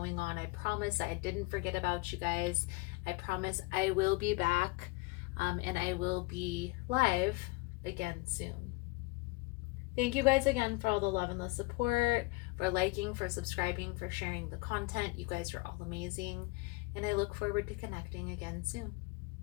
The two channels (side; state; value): right; quieter; 24.4 dB